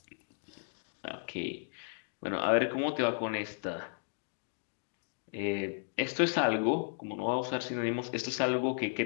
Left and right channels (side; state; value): right; silent; digital silence